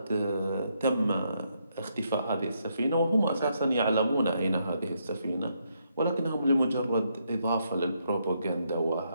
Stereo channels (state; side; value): inverted; both; correlation -0.77